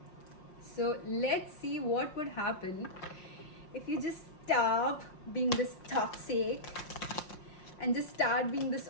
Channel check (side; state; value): right; late; 5.6 ms